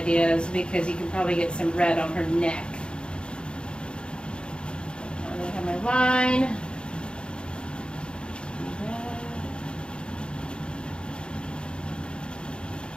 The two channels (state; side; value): late; right; 0.053 ms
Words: is because you can probably get some red on her neck. line.